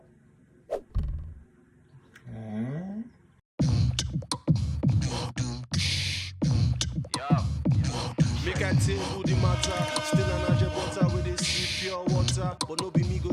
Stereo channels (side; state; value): both; identical; correlation 1.00